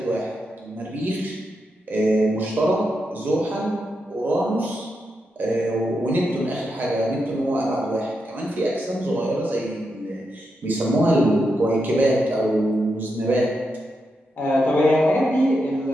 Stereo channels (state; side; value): normal; both; correlation 0.85